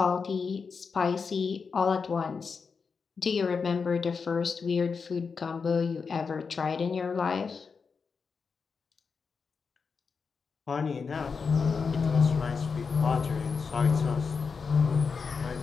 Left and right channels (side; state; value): right; quieter; 5.3 dB